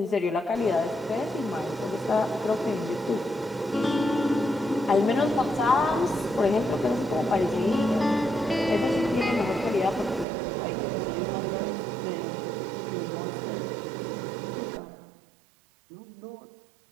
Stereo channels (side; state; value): left; drops out; at 10.2 s